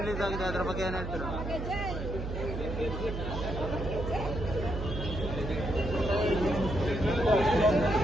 ಆಗಿದೆ, ಅದ್ರ ಬಗ್ಗೆ ಏನ್ ಹೇಳ್ತೀರಾ?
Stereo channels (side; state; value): right; noise; hum, 5 dB below the sound